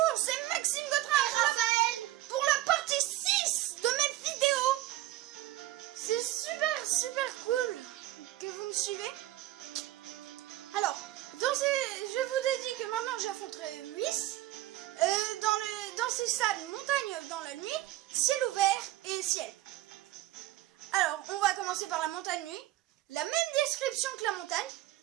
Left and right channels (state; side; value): quieter; left; 15.6 dB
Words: c'est Maxime Gautrin et Raphaël pour la partie 6 de mes vidéos. C'est super cool que vous me suivez. Alors, je vous ai dit que maintenant j'affronterai Whis dans ces salles montagne dans la nuit, ciel ouvert et ciel. Alors, on va commencer par la montagne nuit. La même description que la montagne.